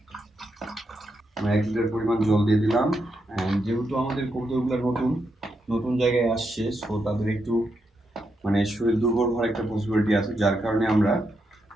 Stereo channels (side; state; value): both; normal; correlation 0.83